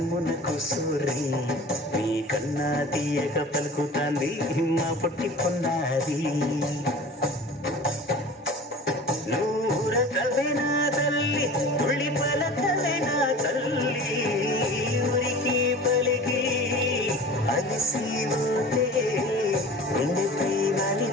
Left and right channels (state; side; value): normal; both; correlation 0.39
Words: కూసూరి నీకన్నా తీయగా పలుకుతాంది మా పొట్టి పొన్నారి నూరకవేనా తల్లి ఉళ్ళి పలకవేనా తల్లి ఉరికి పలికి అలిసి ఉంటే గుండెపై